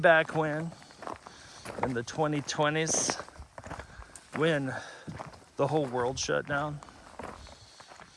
when, in the 2020s, when the whole world shut down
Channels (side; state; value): both; identical; correlation 1.00